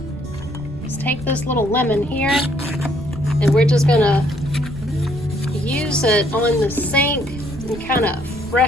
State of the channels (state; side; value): noise; right; rumble, 14 dB below the sound